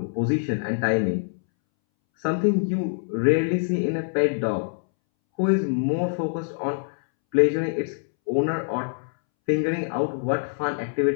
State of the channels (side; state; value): right; silent; 62 dB below the other